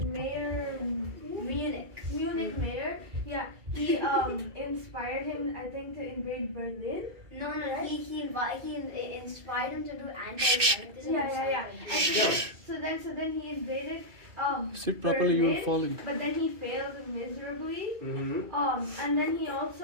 mayor, Munich mayor, yeah, he inspired him, I think, to invade Berlin. No, he inspired him to do anti-Semitism. Yeah. And No. so then he invaded Sit properly, you Berlin, are falling. but then he failed miserably. Mm-hmm. And then he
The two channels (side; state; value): left; late; 2.6 ms